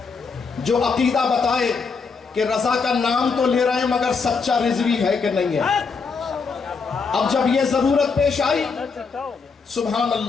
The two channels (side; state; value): right; quieter; 5.0 dB